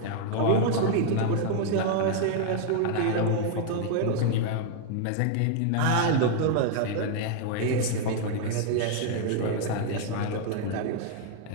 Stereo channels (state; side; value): different; both; correlation 0.00